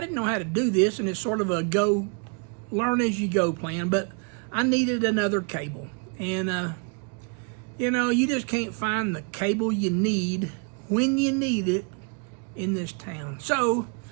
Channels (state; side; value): quieter; left; 37.3 dB